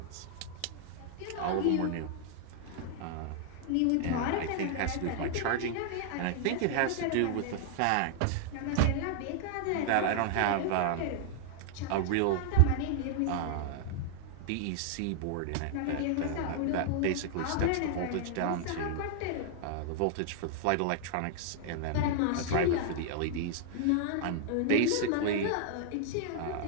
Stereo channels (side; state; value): both; different; correlation -0.01